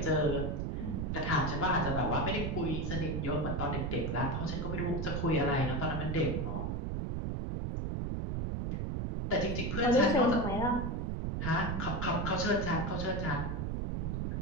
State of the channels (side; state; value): right; noise; rumble, 1 dB below the sound